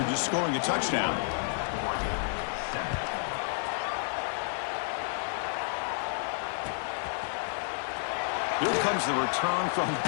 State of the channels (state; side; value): silent; right; digital silence